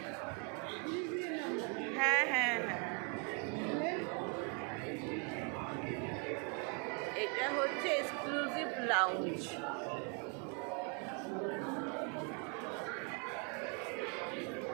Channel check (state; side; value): quieter; left; 36.7 dB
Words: হ্যাঁ হ্যাঁ হ্যাঁ, এটা হচ্ছে এক্সক্লুসিভ লাউঞ্জ।